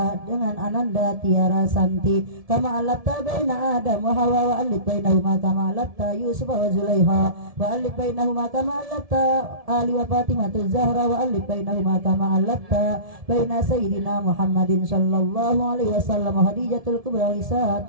dengan Ananda Tiara Santi kama alafta baina Adam wa Hawa wa alif bainahuma kama alafta Yusuf wa Zulaiha wa alif bainahuma kama alafta Ali wa Fatimah Zahra wa alif bainahuma kama alafta baina Sayyidina Muhammadin sallallahu alaihi wasallam wa Khadijatul Kubra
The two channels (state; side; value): late; left; 1.7 ms